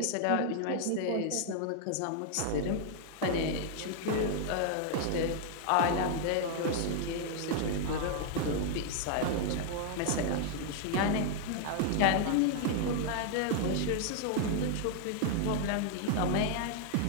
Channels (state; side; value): different; both; correlation 0.00